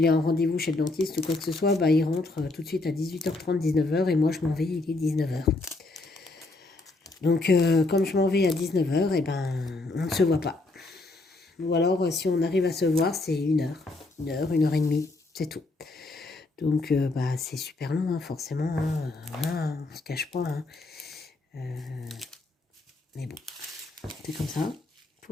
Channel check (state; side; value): quieter; right; 3.2 dB